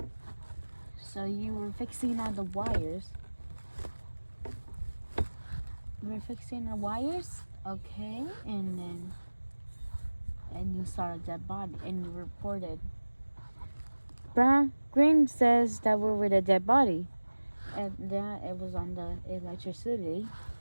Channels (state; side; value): inverted; both; correlation -1.00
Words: So you were fixing all the wires. Okay, and you saw a dead body, and you reported. Green says that we were the dead body, and that it was on the electricity.